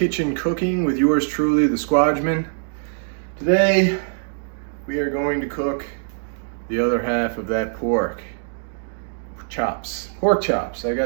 Cooking with yours truly, the Squadgeman. Today we are going to cook the other half of that pork chops. I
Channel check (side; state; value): left; silent; digital silence